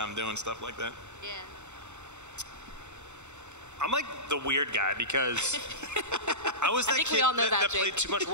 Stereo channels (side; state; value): left; late; 0.83 ms